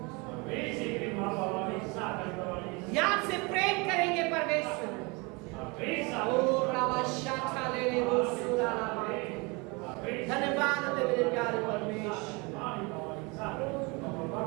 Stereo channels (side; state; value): left; quieter; 28.0 dB